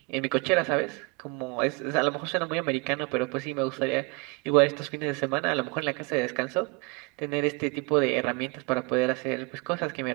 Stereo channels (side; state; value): left; quieter; 29.5 dB